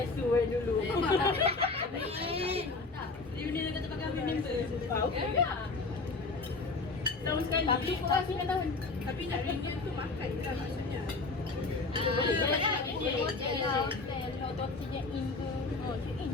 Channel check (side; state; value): right; quieter; 3.7 dB